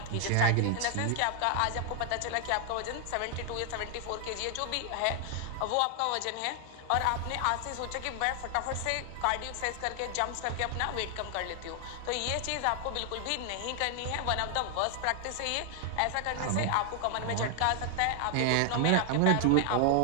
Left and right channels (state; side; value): different; both; correlation 0.00